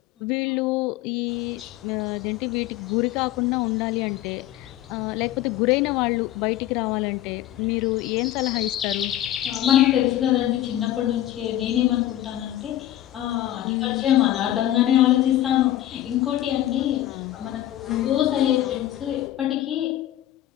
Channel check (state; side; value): quieter; right; 13.4 dB